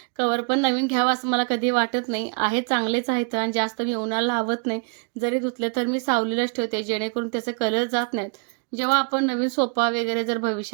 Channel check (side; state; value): left; quieter; 39.0 dB